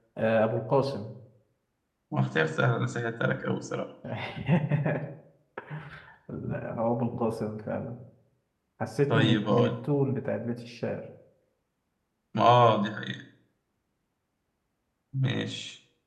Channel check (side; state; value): both; identical; correlation 1.00